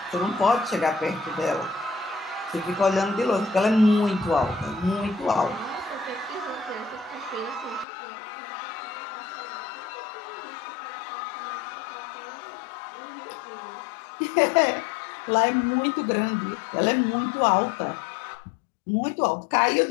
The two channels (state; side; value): drops out; right; at 7.9 s